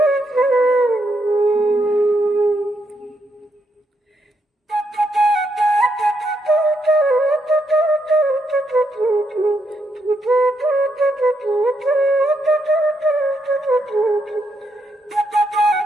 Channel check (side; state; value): both; normal; correlation 0.78